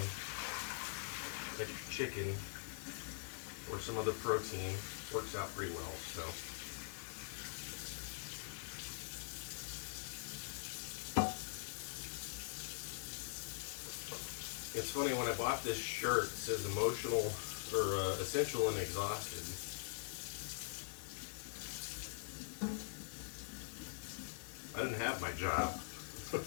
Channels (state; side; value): silent; right; digital silence